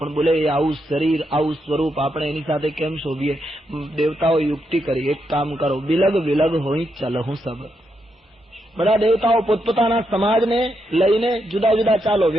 બોલે, એ આવું શરીર, આવું સ્વરૂપ, આપણે એની સાથે કેમ શોભીએ? દેવતાઓ યુક્તિ કરી, એક કામ કરો, બિલગ વિલગ હોય ચલહું સબ. બધા દેવતાઓ પોતપોતાના સમાજને લઈને જુદા જુદા ચાલો,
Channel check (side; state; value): both; normal; correlation 0.82